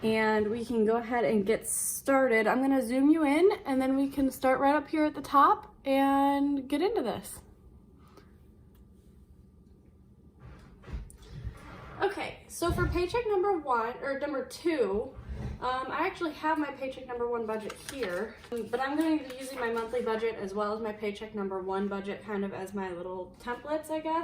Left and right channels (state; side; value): identical; both; correlation 1.00